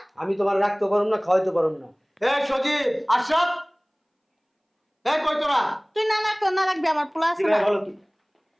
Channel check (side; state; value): both; identical; correlation 1.00